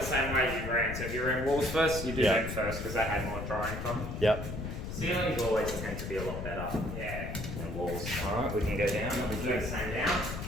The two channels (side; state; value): left; noise; rumble, 6 dB below the sound